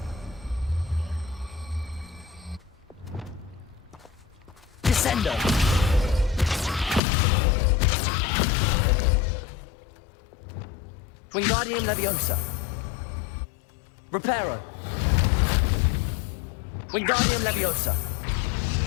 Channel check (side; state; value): right; drops out; at 7.0 s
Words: Descendo. Wingardium Leviosa. Reparo. Wingardium Leviosa.